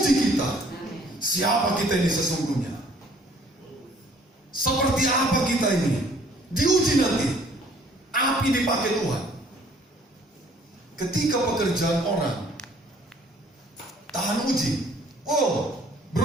kita. Siapa kita ini sesungguhnya? Seperti apa kita ini? Diuji nanti. Api dipakai Tuhan. Ketika pekerjaan orang tahan uji, oh,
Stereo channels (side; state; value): both; normal; correlation 0.58